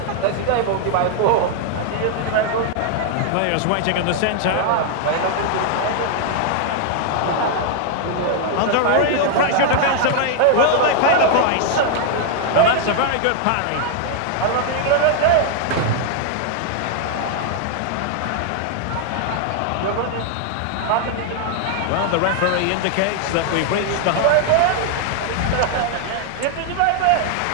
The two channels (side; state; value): both; different; correlation 0.00